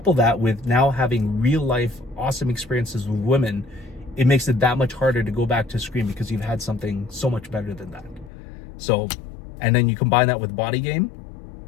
that with now having real life awesome experiences with women, it makes it that much harder to go back to screen because you've had something so much better than that. So, and then you combine that with body game,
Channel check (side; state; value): right; drops out; at 8.3 s